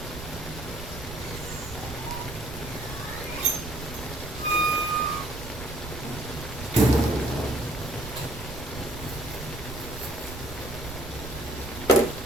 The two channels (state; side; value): noise; right; rumble, 11 dB below the sound